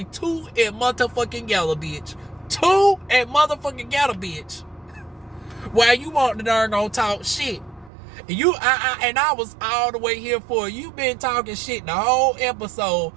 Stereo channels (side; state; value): left; drops out; at 7.9 s